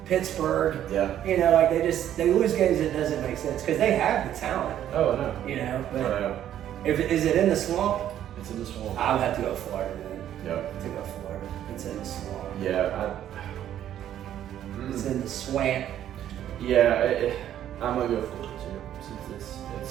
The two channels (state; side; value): quieter; left; 11.1 dB